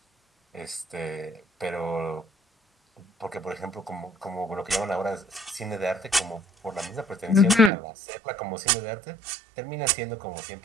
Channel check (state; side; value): drops out; left; at 7.7 s